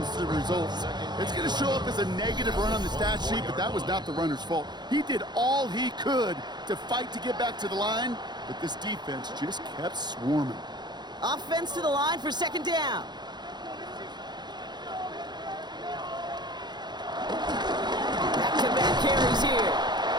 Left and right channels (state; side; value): late; left; 0.21 ms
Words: to the results. It's going to show up as a negative run on the stat sheet, but that was not the runner's fault. He did all he could to fight to get back to the line, but this defense just kept swarming. Offense to the line for 2nd down. Back-to-back carries here.